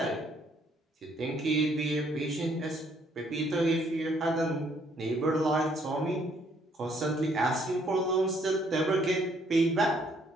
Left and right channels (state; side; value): normal; both; correlation 0.66